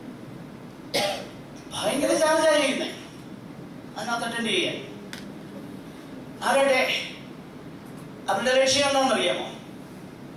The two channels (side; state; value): both; identical; correlation 1.00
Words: ഭയങ്കര ചാർജാണ് ചെയ്യുന്നത് അതിനകത്ത് അറ്റൻഡ് ചെയ്യാൻ. ആരുടെ അവരുടെ ലക്ഷ്യം എന്താണെന്നറിയാമോ?